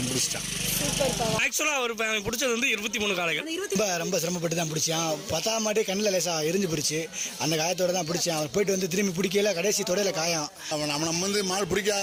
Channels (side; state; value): both; identical; correlation 1.00